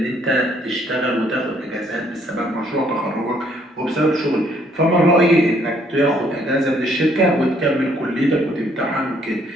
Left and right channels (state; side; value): normal; both; correlation 0.66